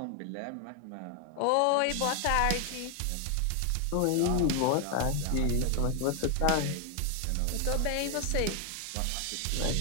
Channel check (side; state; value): both; different; correlation 0.00